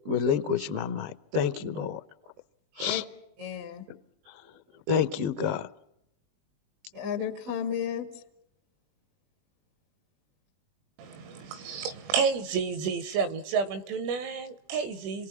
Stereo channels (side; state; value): left; late; 20 ms